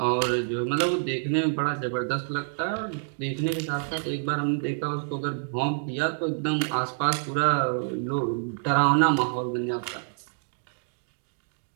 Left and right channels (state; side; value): silent; left; digital silence